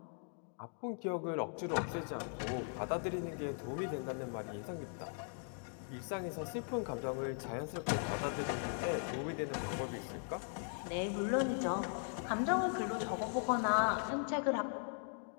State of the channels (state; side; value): silent; right; 52 dB below the other